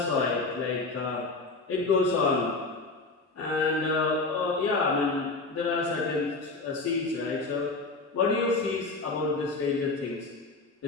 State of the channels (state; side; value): quieter; right; 3.5 dB